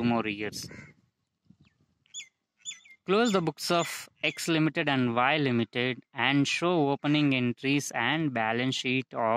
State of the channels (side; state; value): both; identical; correlation 1.00